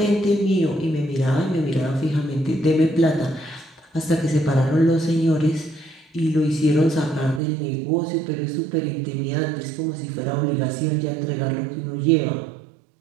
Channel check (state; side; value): drops out; left; at 7.4 s